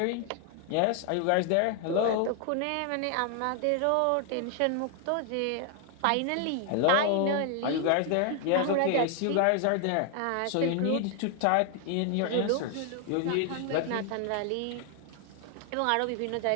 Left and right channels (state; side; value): different; both; correlation 0.00